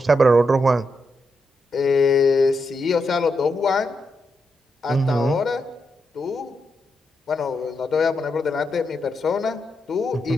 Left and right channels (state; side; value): normal; both; correlation 0.83